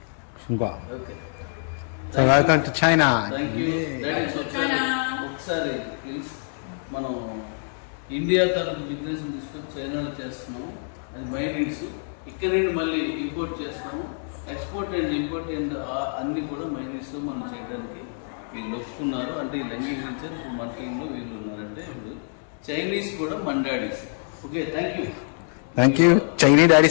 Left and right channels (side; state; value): right; silent; 61 dB below the other